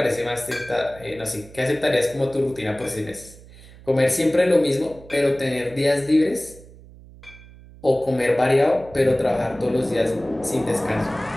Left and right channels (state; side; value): noise; right; hum, 21 dB below the sound